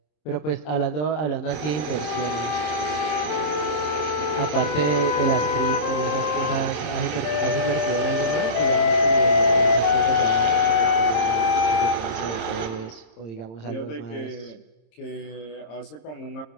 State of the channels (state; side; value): late; right; 26 ms